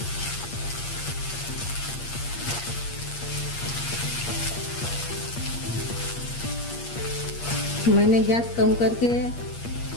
मैंने गैस कम करके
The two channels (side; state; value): right; late; 8.5 ms